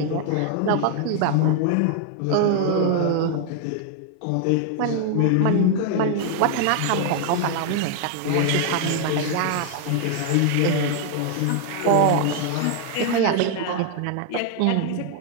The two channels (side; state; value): both; different; correlation 0.00